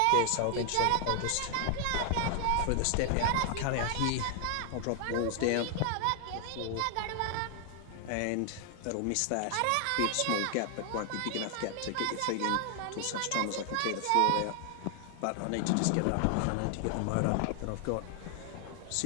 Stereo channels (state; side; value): different; both; correlation 0.00